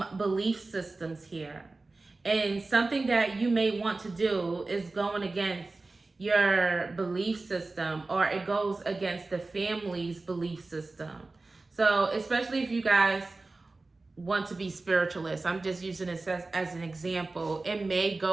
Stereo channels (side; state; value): left; quieter; 3.4 dB